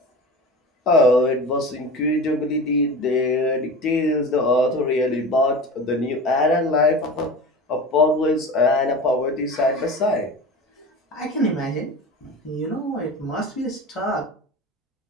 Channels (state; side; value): normal; both; correlation 0.31